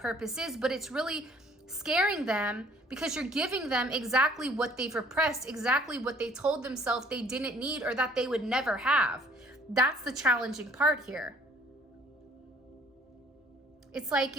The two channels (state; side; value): normal; both; correlation 0.57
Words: is, but it's really scaring them because you're giving them exactly what they've repressed, exactly what they told themselves they didn't need or that they would never have. That's the challenging part here. It's like